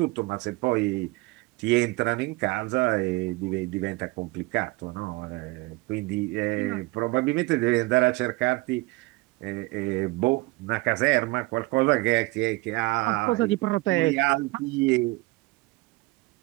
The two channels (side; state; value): left; quieter; 22.5 dB